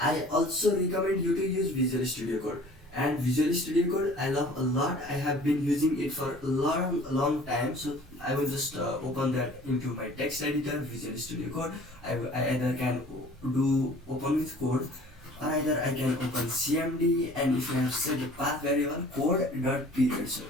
I also recommend you to use Visual Studio Code. And Visual Studio Code I love a lot. I have been using it for a long time. So I will just open that into my text editor, Visual Studio Code. I either can open with code, or either I can open CMD, and if you have set the path variable code.period, so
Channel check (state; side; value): normal; both; correlation 0.49